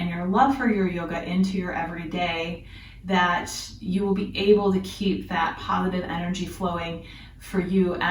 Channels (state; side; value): identical; both; correlation 1.00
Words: your love for your yoga into your everyday, that you will be able to keep that positive energy flowing for you